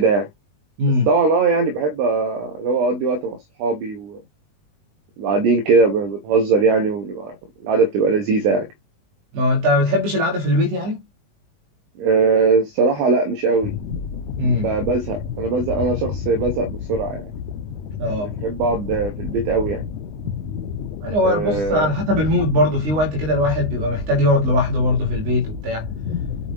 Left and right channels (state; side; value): late; left; 19 ms